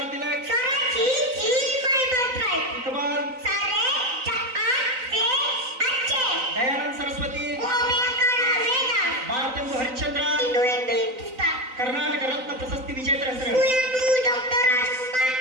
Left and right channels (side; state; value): left; late; 3.9 ms